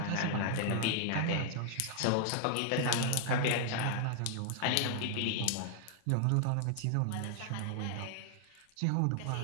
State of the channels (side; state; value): both; different; correlation 0.00